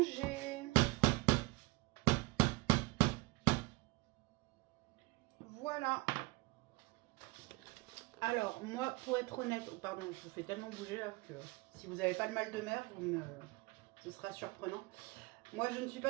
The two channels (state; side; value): quieter; left; 24.5 dB